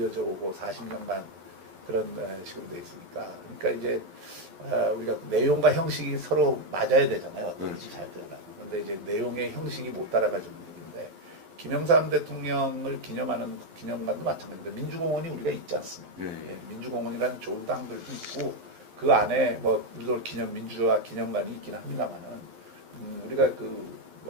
오고 40년간 그런 식으로 돼 있으니까. 그러니까 이제 우리가 내용과 형식이 서로 맞아야 되잖아요. 어떤지 잘 되려면. 그런데 이제 내용의 형식이 못 따라가지고 일인데 김영삼 대통령을 기념하는 기념관도 마찬가지입니다. 민주공원이 우리가 있지 않습니까? 예, 민주공원이라는 좋은 땅들도 있고 그 안에 뭐 물론 민주화 기념관이 있긴 합니다만은 우리가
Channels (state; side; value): late; left; 12 ms